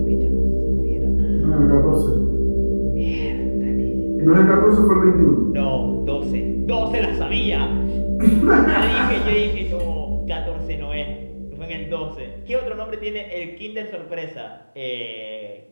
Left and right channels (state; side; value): inverted; both; correlation -1.00